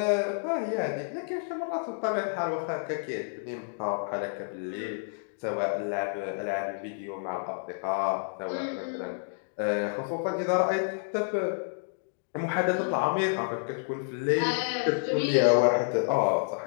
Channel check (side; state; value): right; silent; digital silence